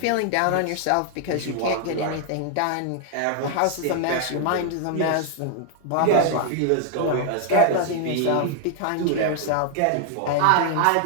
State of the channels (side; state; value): both; different; correlation 0.00